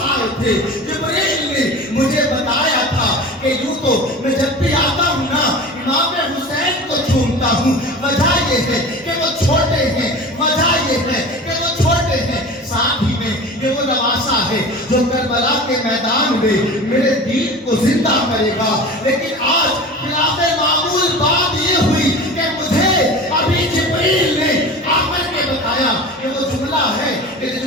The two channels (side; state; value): both; normal; correlation 0.35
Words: آئے تھے. جبریل نے مجھے بتایا تھا کہ یوں تو میں جب بھی آتا ہوں نا امام حسین کو چومتا ہوں. وجہ یہ ہے کہ وہ چھوٹے ہیں, وجہ یہ ہے کہ وہ چھوٹے ہیں, ساتھ ہی میں یہ وہ نواسا ہے جو کربلا کے میدان میں میرے دین کو زندہ کرے گا. لیکن آج خلاف معمول بات یہ ہوئی کہ مجھے ابھی جبریل نے آ کر کے بتایا کہ وہ جملہ ہے کہ